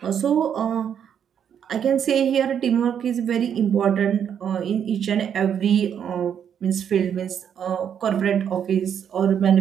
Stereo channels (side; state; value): left; quieter; 8.5 dB